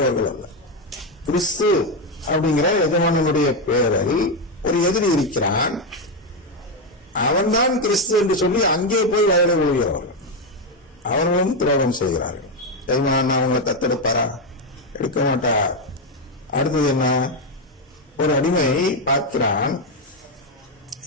அல்ல. கிறிஸ்து அப்படிங்கிற எஜமானனுடைய பெயரில் ஒரு எதிரி இருக்கிறான், அவன்தான் கிறிஸ்து என்று சொல்லி அங்கே போய் வயலை விழுகிறவர்கள். அவர்களும் துரோகம் செய்கிறார்கள். எஜமானன் அவங்களை தத்தெடுப்பாரா? எடுக்க மாட்டார். அடுத்தது என்ன? ஒரு அடிமை பார்க்கிறான்,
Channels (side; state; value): both; normal; correlation 0.07